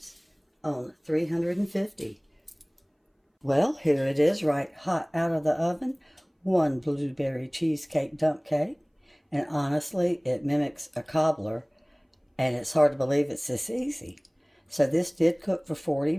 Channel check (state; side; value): identical; both; correlation 1.00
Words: on 350. Well, here it is, right hot out of the oven. One blueberry cheesecake dump cake. And honestly, it mimics a cobbler. And it's hard to believe it's this easy. So this did cook for 40